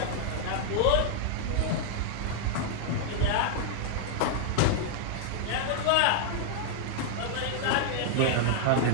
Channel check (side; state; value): both; different; correlation -0.01